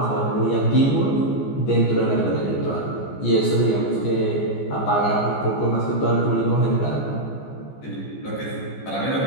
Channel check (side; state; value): right; late; 14 ms